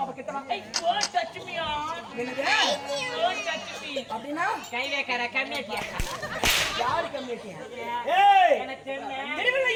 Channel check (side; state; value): both; identical; correlation 1.00